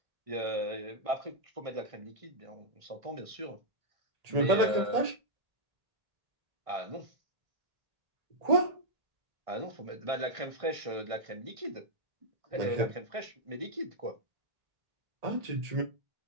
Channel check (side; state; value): left; late; 1.6 ms